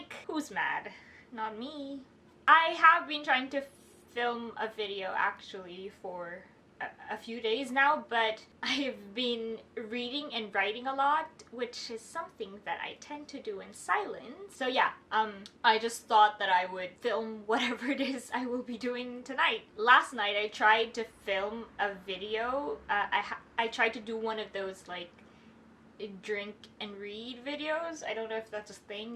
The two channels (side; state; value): both; identical; correlation 1.00